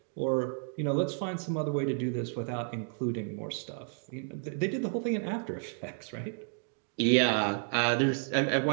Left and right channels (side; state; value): left; silent; 57 dB below the other